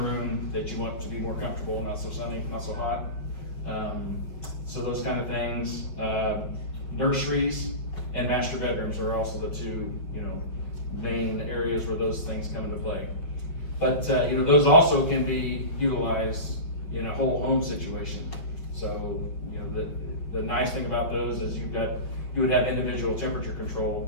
that you want to be more comfortable, not so sunny, not so hot. So those kind of things. Nurseries and master bedrooms are also the 2, main areas where those things come into play. But those also can be utilized in a whole home situation. So the nice thing about those is you would have individual temperature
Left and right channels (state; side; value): late; right; 5.7 ms